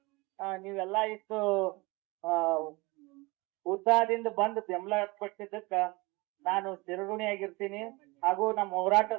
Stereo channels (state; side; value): quieter; left; 24.9 dB